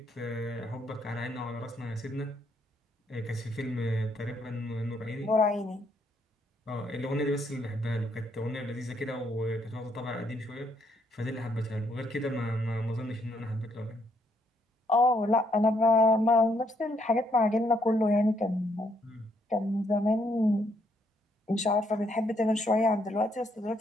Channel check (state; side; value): normal; both; correlation 0.72